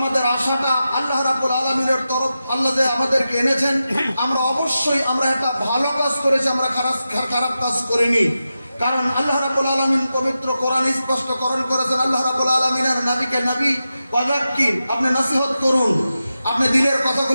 আশাটা আল্লাহ রাব্বুল আলামিনের তরফ, আল্লাহ যে আমাদেরকে এনেছেন, আমরা অবশ্যই আমরা একটা ভালো কাজ করেছি, আমরা খারাপ কাজ করিনি। কারণ আল্লাহ রাব্বুল আলামিন পবিত্র কোরআন স্পষ্টকরণ করেছেন, আল্লাহ রাব্বুল আলামিনের নবীকে নবী ওয়াযাক্কির, আপনি নসিহত করুন, আপনি দিনের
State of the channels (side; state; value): both; inverted; correlation -0.91